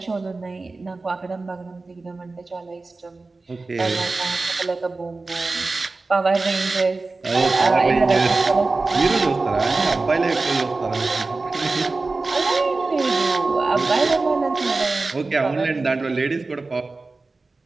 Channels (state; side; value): quieter; left; 3.6 dB